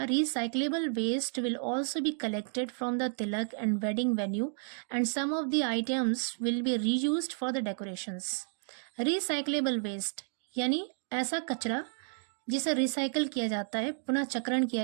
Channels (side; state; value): left; silent; 57 dB below the other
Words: recyclable waste will also be collected from the tilak and wedding venue and some of the items will be reused for the decorations. Recyclable waste यानी ऐसा कचरा जिसे रिसाइकल किया जाता है, पुनः चक्रण